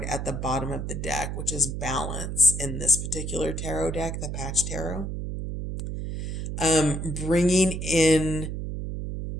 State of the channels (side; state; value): right; noise; hum, 4 dB below the sound